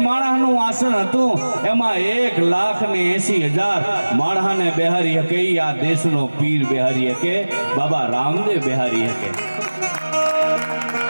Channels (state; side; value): inverted; both; correlation -1.00